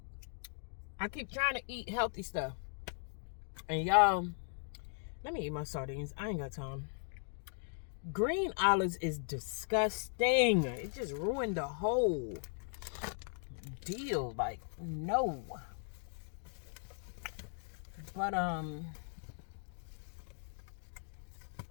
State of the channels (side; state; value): right; silent; 52 dB below the other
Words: keep trying to eat healthy stuff. And y'all, let me eat my sardines. I ain't got time. Green olives is disgusting. It just ruined the whole deal. Like, no. But I'm